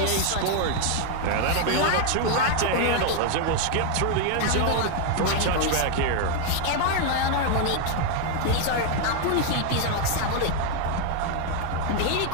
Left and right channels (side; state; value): both; different; correlation 0.00